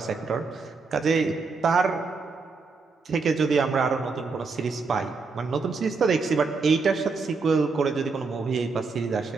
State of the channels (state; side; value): quieter; left; 4.4 dB